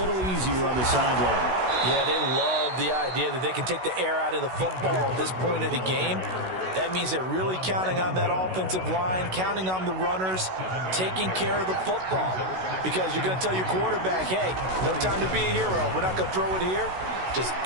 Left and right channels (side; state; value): left; late; 16 ms